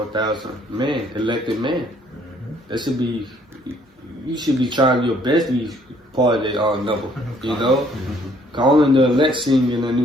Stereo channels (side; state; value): both; normal; correlation 0.63